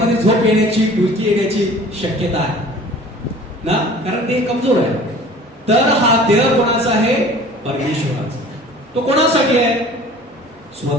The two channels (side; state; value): both; normal; correlation 0.46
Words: झोप येण्याची, डुलकी येण्याची शक्यता आहे ना, कारण देह कमजोर आहे. तर हा देह कोणाचा आहे? परमेश्वराचा. तो कोणासाठी आहे?